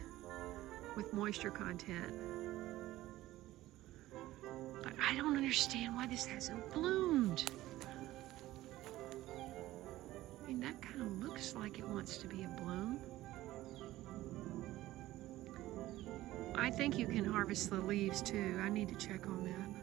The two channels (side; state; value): left; quieter; 16.0 dB